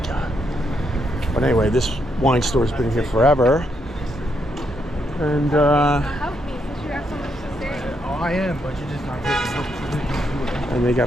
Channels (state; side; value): normal; both; correlation 0.78